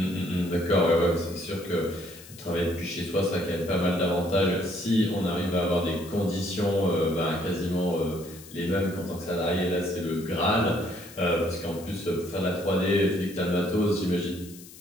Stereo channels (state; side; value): noise; left; hiss, 19 dB below the sound